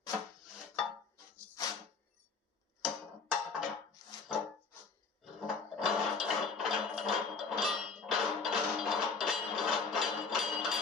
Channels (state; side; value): quieter; right; 4.7 dB